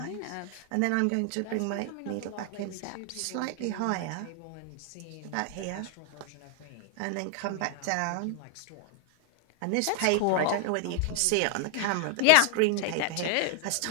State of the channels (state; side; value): different; both; correlation 0.00